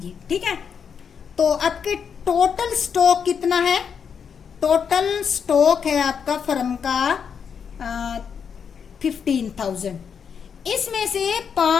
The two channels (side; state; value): right; quieter; 6.9 dB